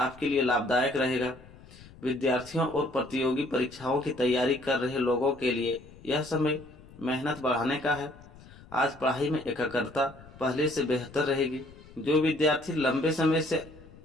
लिए लाभदायक रहेगा। विद्यार्थियों और प्रतियोगी परीक्षाओं की तैयारी कर रहे लोगों के लिए यह समय मेहनत बढ़ाने का है। आज पढ़ाई में एकाग्रता पहले से बेहतर रहेगी। जो विद्यार्थी लंबे समय से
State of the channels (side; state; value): left; noise; rumble, 21 dB below the sound